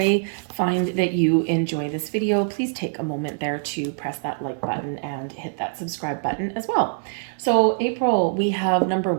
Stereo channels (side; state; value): left; silent; digital silence